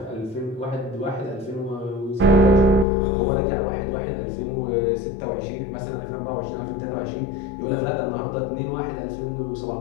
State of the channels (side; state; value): right; drops out; at 2.9 s